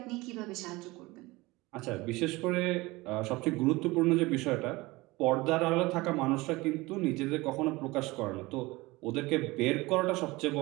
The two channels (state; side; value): quieter; left; 21.6 dB